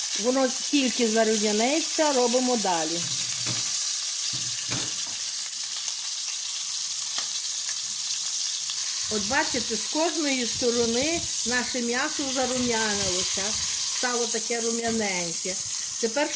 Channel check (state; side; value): identical; both; correlation 1.00